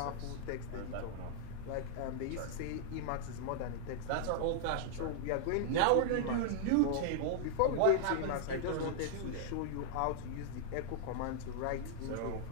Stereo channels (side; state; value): both; different; correlation -0.01